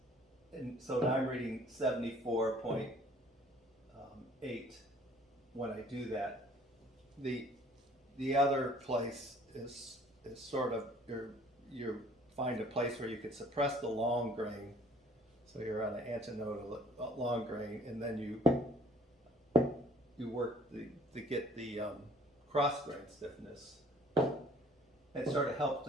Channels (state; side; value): normal; both; correlation 0.56